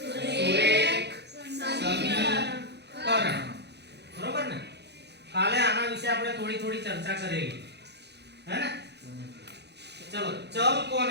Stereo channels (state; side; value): late; left; 0.49 ms